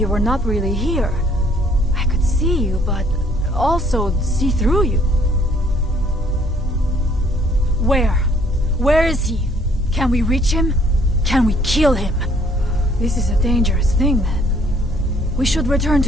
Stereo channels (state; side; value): normal; both; correlation 0.62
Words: were not really here. I could see you, but also see through you. Where? Where is he? Can we reach him? Can we kill him? This is a dangerous thing, then. We should return